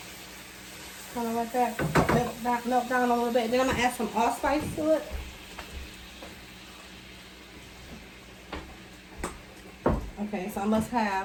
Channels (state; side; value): identical; both; correlation 1.00